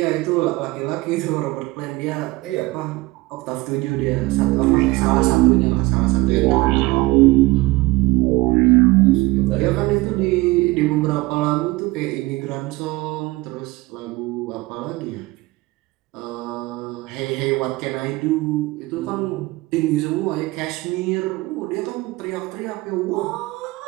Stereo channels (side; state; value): left; quieter; 20.9 dB